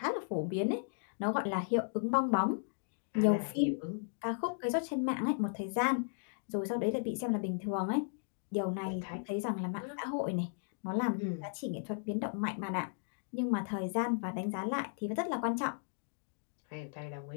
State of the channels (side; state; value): right; silent; digital silence